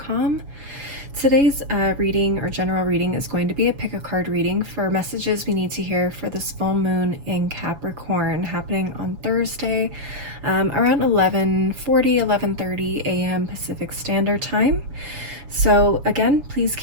Today's reading or general reading is going to be a pick a card reading for messages we need to hear for this full moon in Capricorn happening on Thursday around 11:30 a.m. Pacific Standard Time. So again, please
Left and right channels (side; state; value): left; late; 7.2 ms